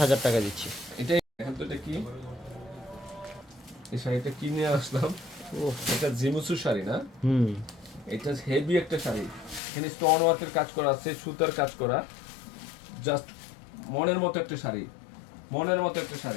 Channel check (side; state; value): right; drops out; at 9.6 s